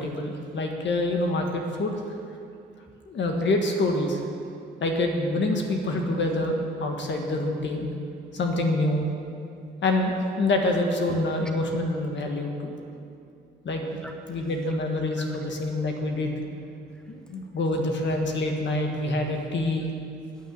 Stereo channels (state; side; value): normal; both; correlation 0.50